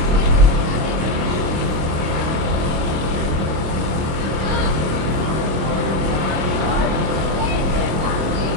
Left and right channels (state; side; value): late; left; 26 ms